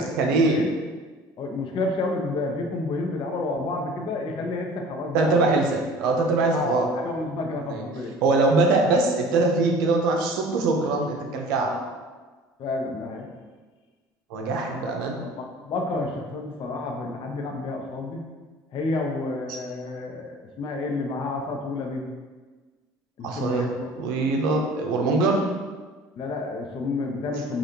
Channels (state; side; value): normal; both; correlation 0.45